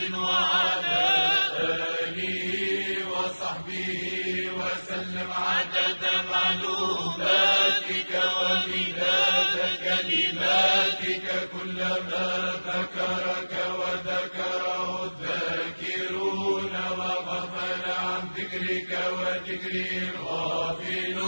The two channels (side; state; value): both; inverted; correlation -1.00